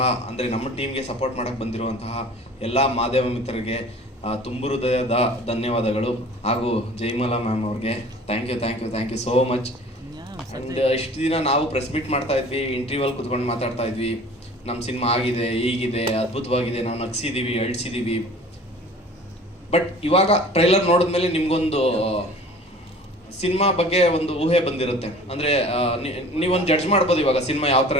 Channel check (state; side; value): normal; both; correlation 0.45